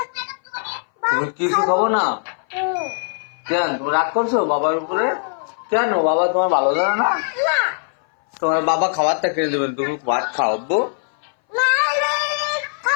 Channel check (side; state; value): right; silent; 61 dB below the other